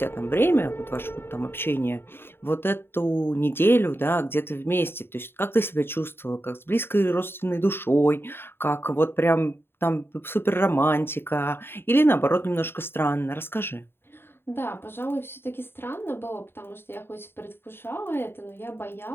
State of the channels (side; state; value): right; late; 0.11 ms